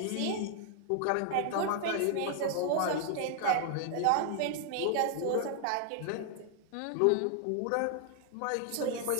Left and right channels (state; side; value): different; both; correlation 0.00